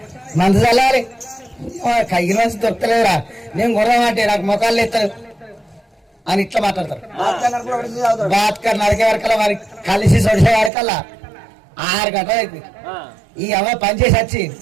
మందు చల్లాలి కైగిన మంచి దొరకలేదురా నేను కొడదామంటే నాకు మొఖాలు ఎత్తారు అని ఇట్లా మాట్లాడతారు. బాత్కర్ నరికే వరకల్లా మరి కలిసి సొడిసే వరకల్లా 6 గంటలు అవుతుంది. ఈ అమ్మ పనిచేసి వచ్చి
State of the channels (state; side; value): drops out; left; at 10.7 s